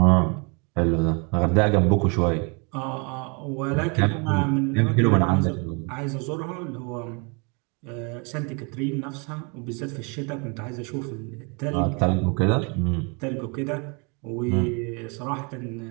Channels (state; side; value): quieter; left; 32.9 dB